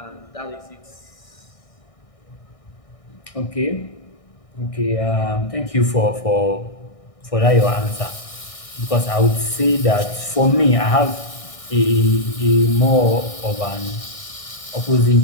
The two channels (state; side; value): late; right; 1.6 ms